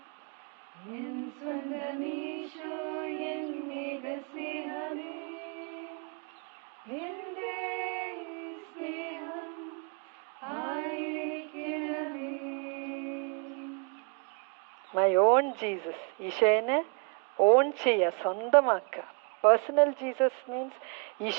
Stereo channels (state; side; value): quieter; left; 35.1 dB